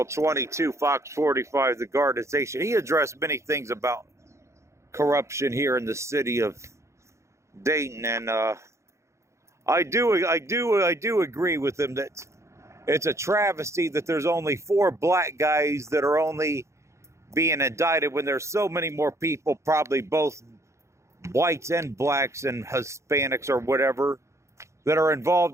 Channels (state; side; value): late; left; 0.14 ms